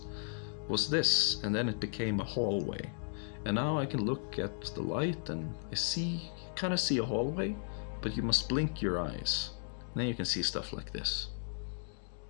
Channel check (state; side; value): silent; right; digital silence